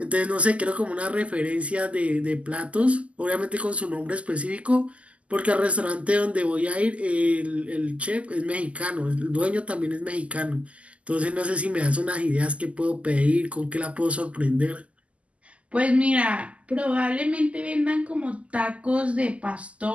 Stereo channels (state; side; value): late; left; 0.062 ms